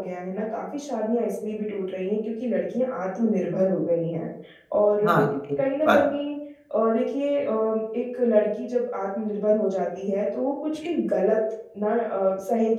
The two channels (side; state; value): both; identical; correlation 1.00